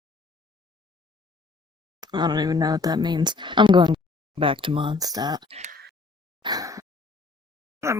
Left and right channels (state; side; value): quieter; right; 3.8 dB